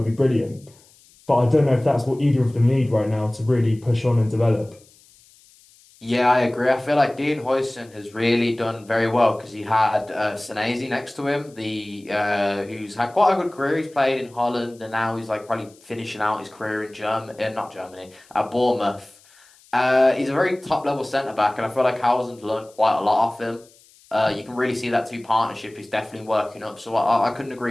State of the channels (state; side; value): noise; left; hiss, 28 dB below the sound